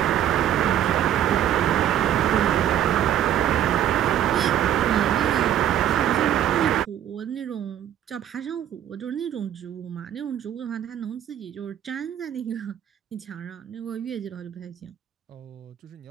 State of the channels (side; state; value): left; quieter; 10.8 dB